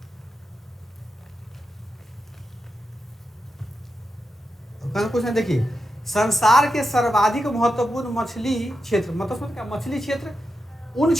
कुछ नहीं, देखिए, संसार के सर्वाधिक महत्वपूर्ण मछली क्षेत्र, मतलब क्या, मछली क्षेत्र उन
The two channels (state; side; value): normal; both; correlation 0.88